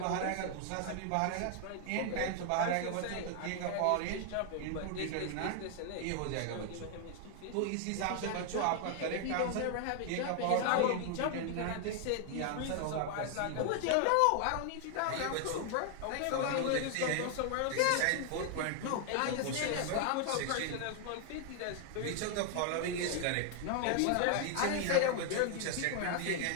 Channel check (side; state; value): both; different; correlation 0.00